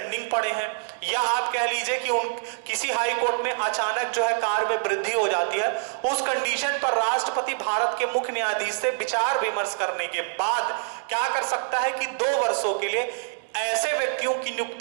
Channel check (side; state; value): left; silent; digital silence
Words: पड़े हैं, या आप कह लीजिए कि किसी हाई कोर्ट में अचानक जो है कार्य में वृद्धि हो जाती है, उस कंडीशन पर राष्ट्रपति भारत के मुख्य न्यायाधीश से विचार विमर्श करने के बाद क्या कर सकता है कि 2 वर्षों के लिए ऐसे व्यक्तियों की